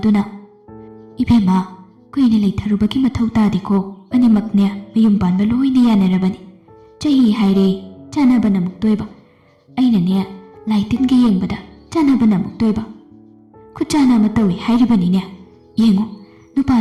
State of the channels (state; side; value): identical; both; correlation 1.00